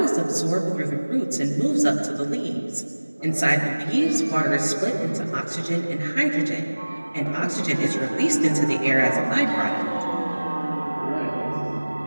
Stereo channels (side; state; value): both; inverted; correlation -1.00